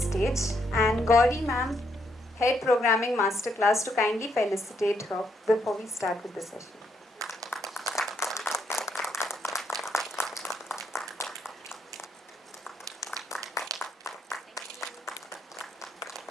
and Gauri ma'am, Head Programming Masterclass, to kindly felicitate her before we start with the session.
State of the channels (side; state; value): both; normal; correlation 0.76